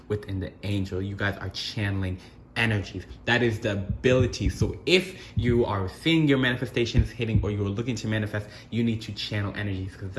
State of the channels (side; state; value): both; identical; correlation 1.00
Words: within the angel. You guys are channeling energies. That is the ability. So if you are seeing your manifestations hitting, or you're looking to manifest, you need to channel energies, because